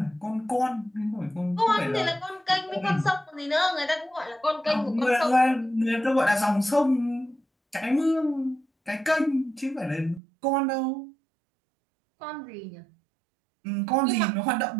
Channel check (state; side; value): drops out; left; at 10.2 s